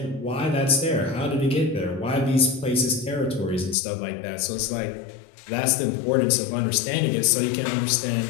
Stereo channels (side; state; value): right; drops out; at 3.8 s